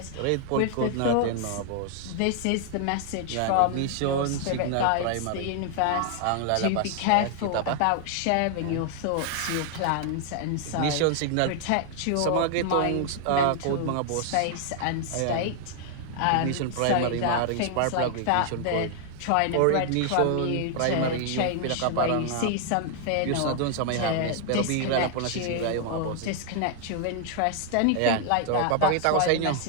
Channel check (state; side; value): different; both; correlation 0.00